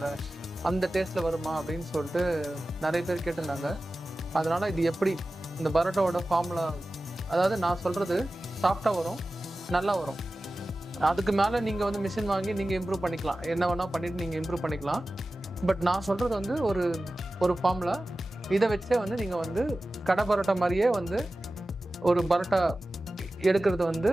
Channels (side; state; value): both; normal; correlation 0.95